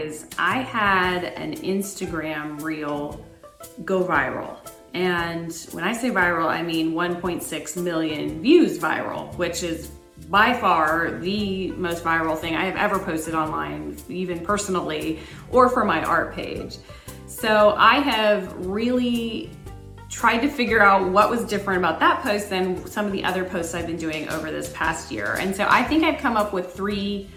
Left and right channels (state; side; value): identical; both; correlation 1.00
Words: I had an Instagram reel go viral. And when I say viral, I mean 1.6 million views viral, which is by far the most viral thing I have ever posted online, even personally, or for my art page. So I have really tried to figure out what was different about that post than some of the other posts I've been doing over this past year. And so I think I've come up with 3